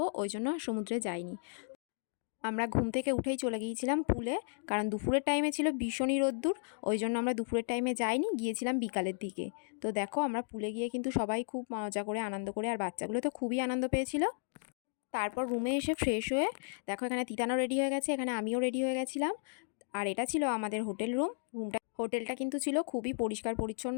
ওই জন্য সমুদ্রে যাইনি। আমরা ঘুম থেকে উঠেই চলে গিয়েছিলাম পুলে, কারণ দুপুরের টাইমে ছিল ভীষণই রোদ্দুর, ওই জন্য আমরা দুপুরের টাইমে যাইনি, গিয়েছিলাম বিকালের দিকে। তো দেখো আমরা পুলে গিয়ে কিন্তু সবাই খুব মজা করে আনন্দ করে, আর বাচ্চাগুলো তো খুবই আনন্দ পেয়েছিল। তারপর রুমে এসে ফ্রেশ হয়ে দেখো এখানে তিতানো রেডি হয়ে গেছে, এখানে আমিও রেডি হয়ে গেছিলাম। আর এটা ছিল আমাদের হোটেল হোটেলটা কিন্তু ছিল খুবই পরিষ্কার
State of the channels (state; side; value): silent; right; digital silence